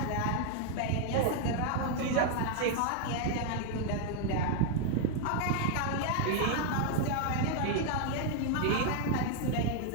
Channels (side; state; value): both; different; correlation 0.00